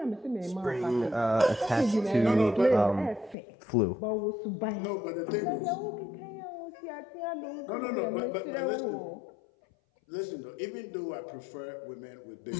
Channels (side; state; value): right; drops out; at 3.4 s